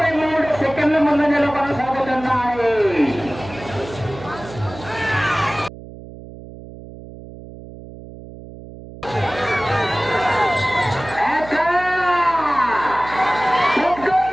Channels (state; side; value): noise; right; hum, 15 dB below the sound